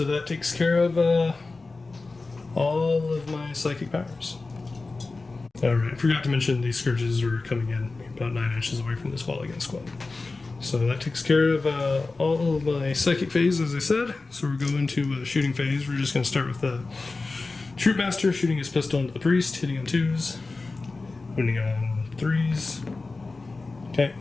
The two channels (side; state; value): right; quieter; 3.6 dB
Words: that takes care of all of my psychic powers. Alright, I forgot to mention these scourges were coming in about 9 inches away from this wall against squad. So that takes care of all of my psychic phase, as I said. So we're going to shooting phase. We're just going to start with the Troop Master shooting his pistol into the priest, hitting on 2s, wounding on 3s. Okay,